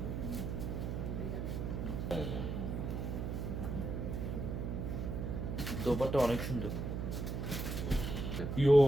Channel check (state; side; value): noise; right; hum, 3 dB below the sound